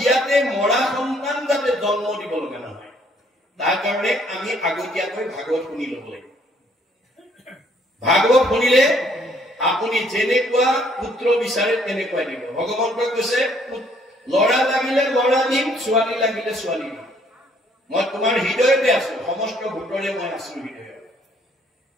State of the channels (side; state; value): both; normal; correlation 0.64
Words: মৰা সন্তান যাতে জন্ম দিব লগা নহয়, তাৰ কাৰণে আমি আগতীয়াকৈ ভাগৱত শুনি ল'ব লাগিব। ভাগৱত শুনিলে আপুনি যেনেকুৱা পুত্ৰ বিচাৰে তেনেকুৱাই দিব। ভগৱন্তই কৈছে, ল'ৰা লাগিলে ল'ৰা দিম, ছোৱালী লাগিলে ছোৱালী দিম। মই তোমাৰ হৃদয়তে আছো, সমস্ত ভূতৰে মই আছো হৃদয়ত।